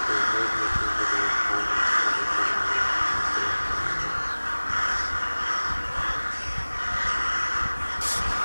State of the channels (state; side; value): inverted; both; correlation -1.00